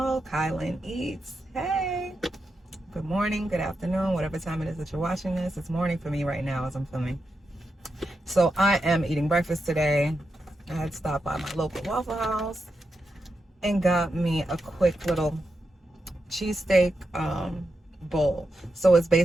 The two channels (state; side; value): normal; both; correlation 0.87